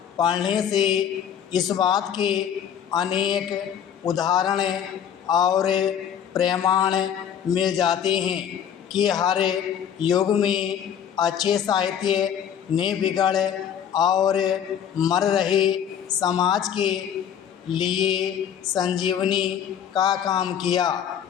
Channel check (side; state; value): right; quieter; 8.9 dB